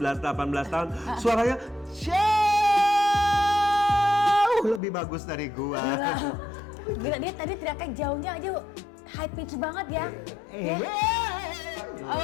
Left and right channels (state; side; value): drops out; right; at 4.8 s